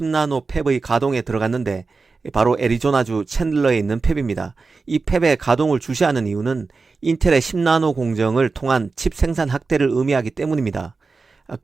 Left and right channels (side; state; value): left; quieter; 4.3 dB